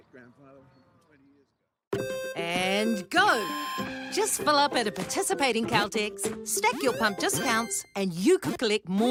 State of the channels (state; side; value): identical; both; correlation 1.00